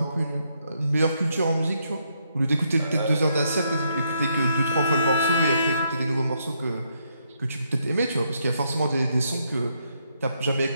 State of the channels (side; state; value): both; inverted; correlation -0.76